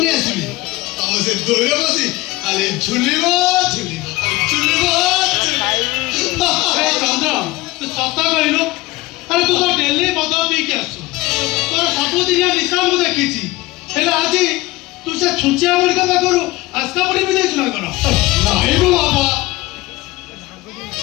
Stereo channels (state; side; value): quieter; right; 20.0 dB